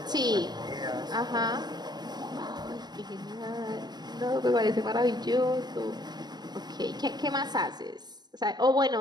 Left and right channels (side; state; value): left; late; 0.20 ms